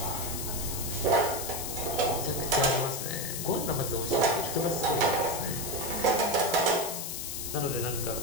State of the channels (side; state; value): left; noise; hiss, 5 dB below the sound